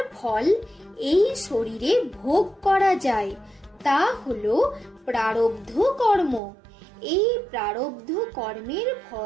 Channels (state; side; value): drops out; left; at 6.4 s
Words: ফল এই শরীরে ভোগ করা যায়। তা হলো প্রারব্ধ কর্ম। এই প্রারব্ধ কর্মের